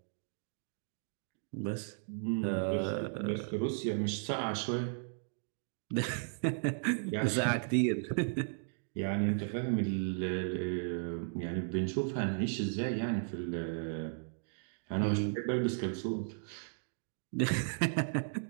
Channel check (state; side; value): silent; left; digital silence